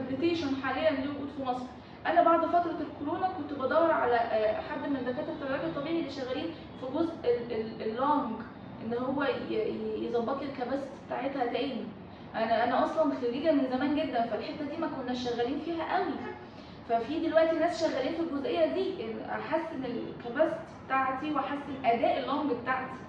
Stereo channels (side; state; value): both; identical; correlation 1.00